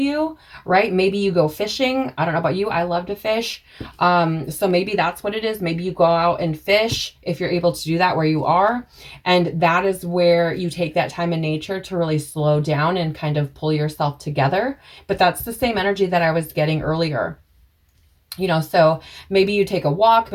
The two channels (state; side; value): identical; both; correlation 1.00